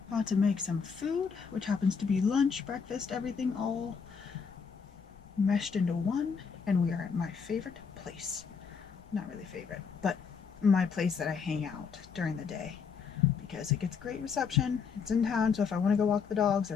about to make some food, which happens to be lunch, breakfast, everything all meshed into one. And we are at my favorite place. Not really favorite, but my place that I hang out during the day because it gets great reception. It's in town, so if I want to go walk the dogs,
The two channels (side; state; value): right; quieter; 5.9 dB